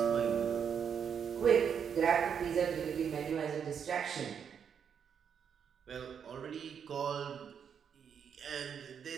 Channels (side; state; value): left; quieter; 7.5 dB